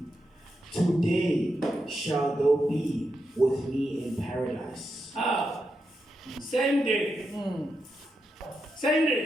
today shalt thou be with me in paradise. Same day. Same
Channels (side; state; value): both; normal; correlation 0.86